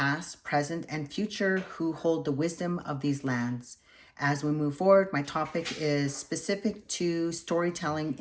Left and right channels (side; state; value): both; identical; correlation 1.00